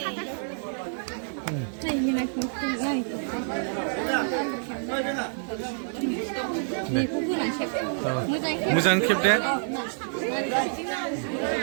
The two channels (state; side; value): silent; left; 60 dB below the other